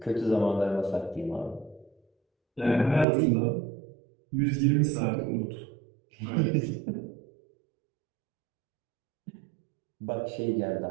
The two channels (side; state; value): left; drops out; at 3.1 s